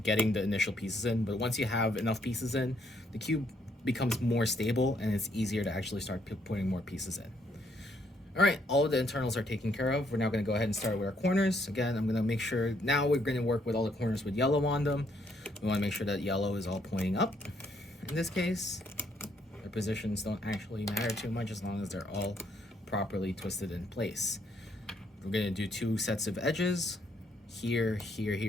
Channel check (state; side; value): normal; both; correlation 0.71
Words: getting the initial pieces in, but once you have enough pieces in, the cube becomes more stable and it's easier to actually start putting more pieces in. All right, all of the internals are taken care of. We're now gonna go ahead and start with our corners. Again, I'm gonna make sure, now we're gonna work with all the corners with yellow on them. We wanna make sure that yellow is all pointing up. In this case, their positions don't actually matter too much as long as they're all properly twisted in place. We're gonna do 2 sets of edges, here, here,